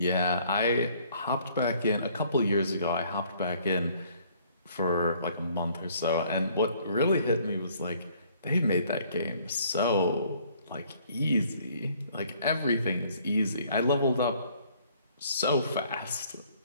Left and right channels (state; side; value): inverted; both; correlation -0.61